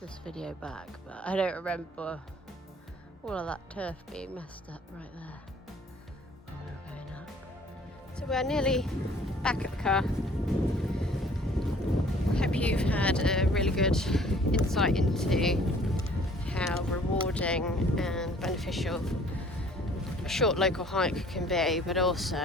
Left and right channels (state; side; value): normal; both; correlation 0.55